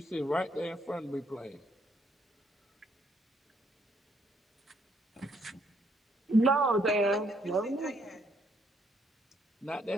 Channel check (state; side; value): normal; both; correlation 0.70